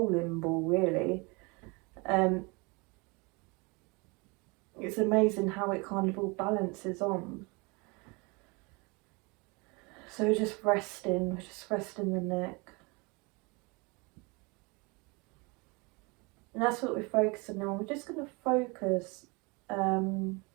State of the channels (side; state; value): left; quieter; 28.4 dB